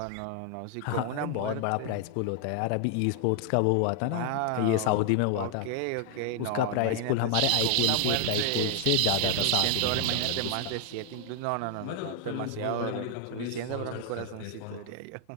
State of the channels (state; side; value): different; both; correlation 0.00